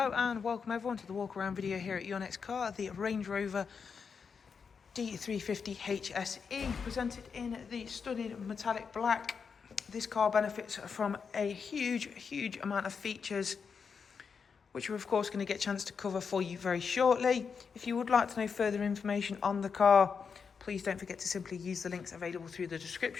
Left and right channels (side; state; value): right; quieter; 5.9 dB